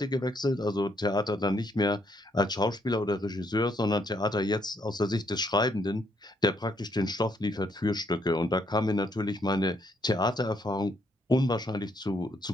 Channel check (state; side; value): normal; both; correlation 0.72